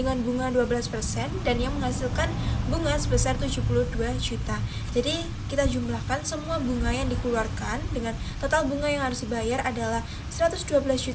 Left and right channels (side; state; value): both; identical; correlation 1.00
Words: bunga 12% dan yang menghasilkan bunga sebesar 72 juta. Jadi kita jumlahkan semua bunga yang dikeluarkan dengan total bunga yang harus dibayar adalah